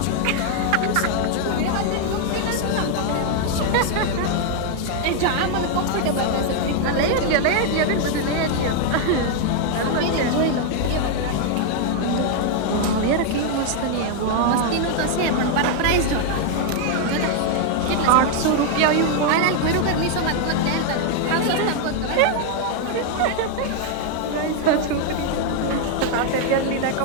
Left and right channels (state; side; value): different; both; correlation 0.00